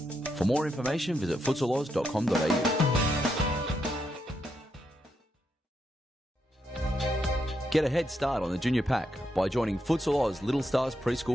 For more information, visit futsaloz.com.au. Get a head start on the junior pack by joining Futsal Oz Little Stars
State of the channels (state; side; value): normal; both; correlation 0.81